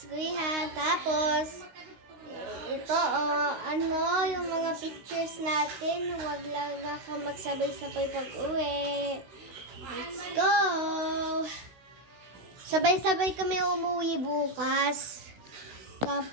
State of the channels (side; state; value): left; late; 16 ms